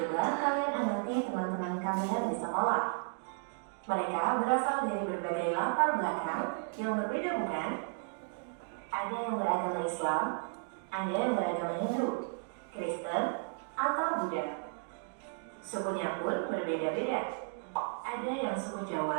kalian amati teman-teman kalian di sekolah. Mereka berasal dari berbagai latar belakang yang berbeda bukan? Ada yang beragama Islam, ada yang beragama Hindu, Kristen, atau Buddha. Sukunya pun berbeda-beda. Ada yang suku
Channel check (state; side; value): silent; left; 55 dB below the other